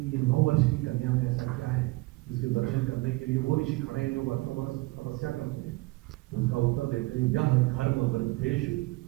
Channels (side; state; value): left; quieter; 22.2 dB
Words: ये 9 वर्ष की कन्या में ऐसा क्या है जिसके दर्शन करने के लिए वो ऋषि खड़े हैं जो वर्षों वर्ष तपस्या करते हैं। तो उसका उत्तर देते हैं, यह धर्म वृद्धेषु